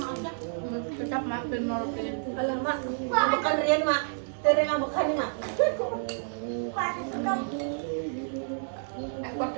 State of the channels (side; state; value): left; silent; digital silence